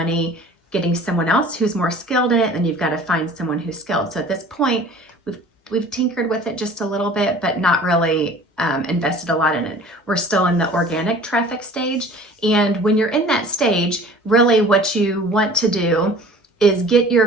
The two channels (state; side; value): normal; both; correlation 0.46